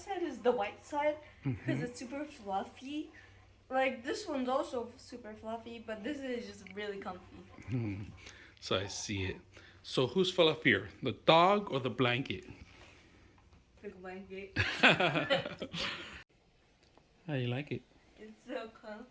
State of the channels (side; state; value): both; identical; correlation 1.00